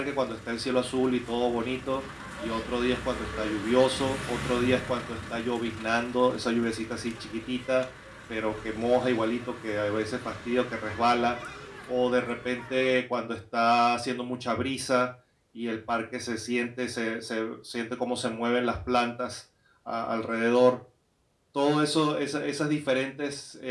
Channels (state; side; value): identical; both; correlation 1.00